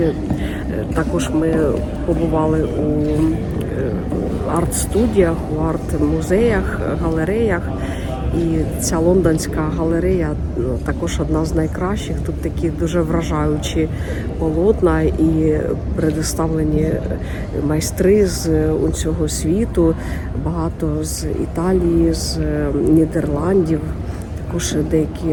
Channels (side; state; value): both; identical; correlation 1.00